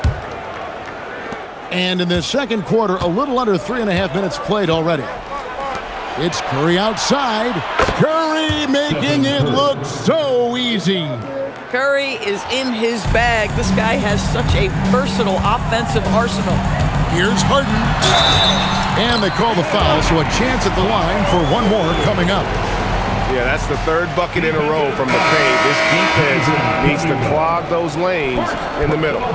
And in the second quarter, a little under 3.5 minutes played already. It's Curry outside. Curry making it look so easy. Curry is in his bag. This guy has such a versatile offensive arsenal. Here's Harden. And they call the foul, so a chance at the line for one more coming up. Yeah, that's the third bucket in a row from the paint. This defense needs to clog those lanes in the middle.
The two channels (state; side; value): identical; both; correlation 1.00